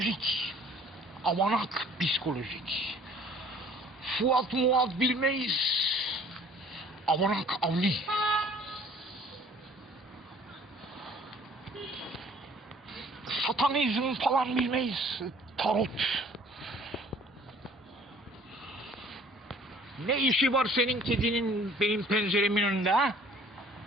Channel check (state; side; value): normal; both; correlation 0.54